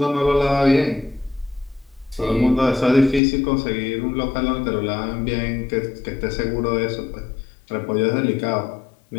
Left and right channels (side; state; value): right; drops out; at 3.2 s